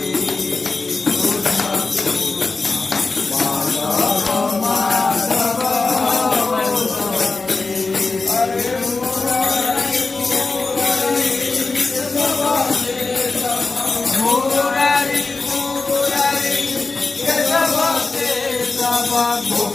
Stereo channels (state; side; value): quieter; right; 3.8 dB